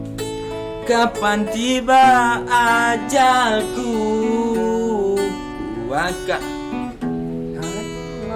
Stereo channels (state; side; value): identical; both; correlation 1.00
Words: kapan tiba ajalku, ku akan